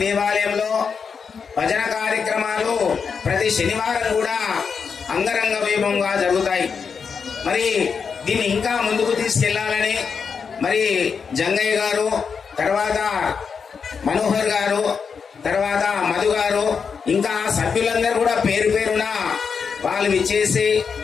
దేవాలయంలో భజన కార్యక్రమాలు ప్రతి శనివారం కూడా అంగరంగ వైభవంగా జరుగుతాయి. మరి దీన్ని ఇంకా ముందుకు తీసుకెళ్లాలని మరి జంగయ్య గారు, తర్వాత మనోహర్ గారు, తర్వాత మధు గారు, ఇంకా సభ్యులందరూ కూడా పేరు పేరున వాళ్ళు విచ్చేసి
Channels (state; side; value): quieter; right; 5.9 dB